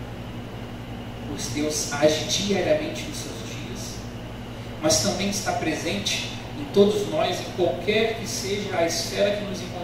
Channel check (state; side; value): identical; both; correlation 1.00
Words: pois Deus age diariamente nos seus dias, mas também está presente em todos nós, em qualquer que seja a esfera que nos